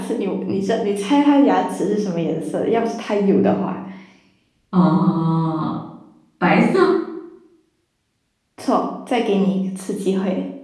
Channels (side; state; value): both; identical; correlation 1.00